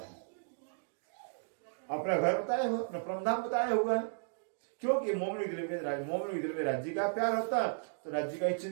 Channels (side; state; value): left; silent; digital silence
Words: अपना घर बताया हुआ, अपना परमधाम बताया हुआ है। क्योंकि मोमिनों के दिल में राज्य का प्यार होता है तो राज्य का ही